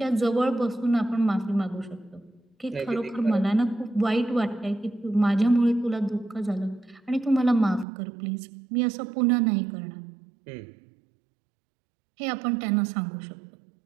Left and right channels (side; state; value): left; drops out; at 7.9 s